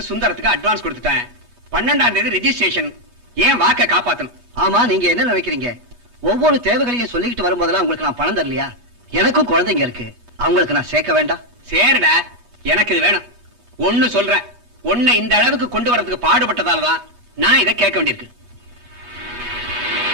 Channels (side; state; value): left; late; 8.3 ms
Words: சுந்தரத்துக்கு அட்வான்ஸ் கொடுத்துட்டேன். 12ஆம் தேதி ரெஜிஸ்ட்ரேஷன். ஏன் வாக்க காப்பாத்தணும். ஆமா, நீங்க என்ன நினைக்கிறீங்க? ஒவ்வொரு தேவைகளையும் சொல்லிக்கிட்டு வரும்போதெல்லாம் உங்களுக்கு நான் பணம் தரலையா? எனக்கும் குழந்தைங்க இருக்கு. அவங்களுக்கு நான் சேர்க்க வேண்டாம்? சேருடா, எனக்கு இது வேணும். ஒண்ணு சொல்றேன், உன்னை இந்த அளவுக்கு கொண்டு வரதுக்கு பாடுபட்டதாலதான் நான் இதை கேட்க வேண்டியிருக்கு.